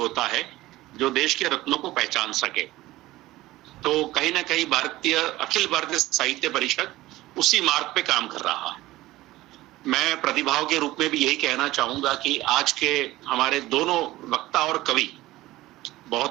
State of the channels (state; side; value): quieter; left; 17.3 dB